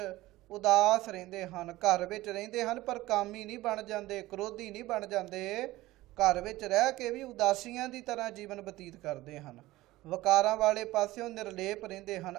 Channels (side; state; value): left; quieter; 17.7 dB